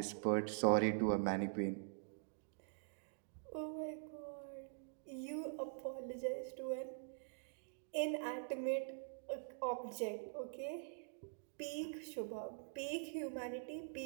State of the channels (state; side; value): silent; left; digital silence